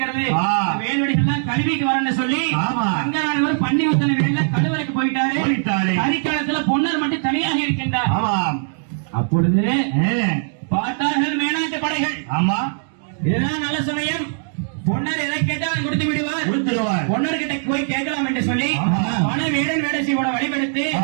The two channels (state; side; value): silent; left; digital silence